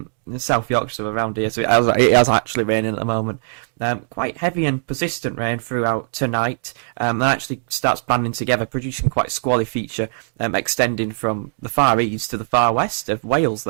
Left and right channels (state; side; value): silent; left; digital silence